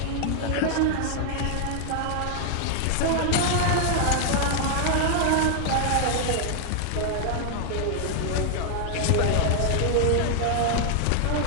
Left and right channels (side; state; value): both; different; correlation 0.00